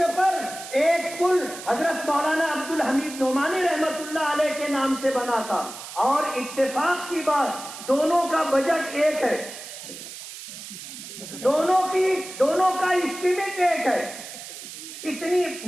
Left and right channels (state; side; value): noise; right; hiss, 12 dB below the sound